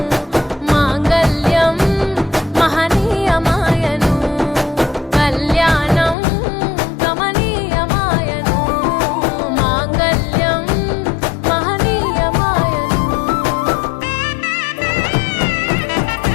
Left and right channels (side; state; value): right; drops out; at 6.2 s